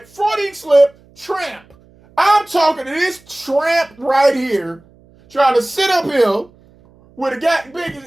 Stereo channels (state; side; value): noise; right; hum, 29 dB below the sound